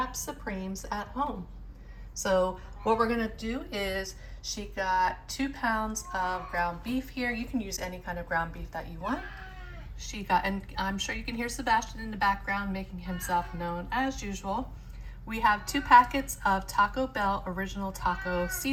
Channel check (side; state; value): both; identical; correlation 1.00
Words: Supremes at home. So what we're gonna do is she got 2 pounds of ground beef here. You can use any kind of ground beef that you want. She got, and I'm sure you can hear Sebastian in the background making himself known as usual. We have 2 packets of Taco Bell Original Taco